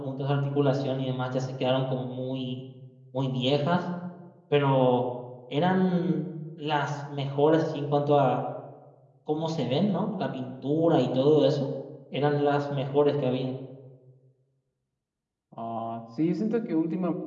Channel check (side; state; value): both; identical; correlation 1.00